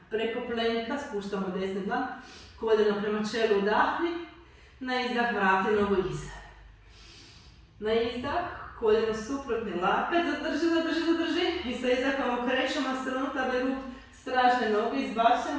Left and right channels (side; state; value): both; identical; correlation 1.00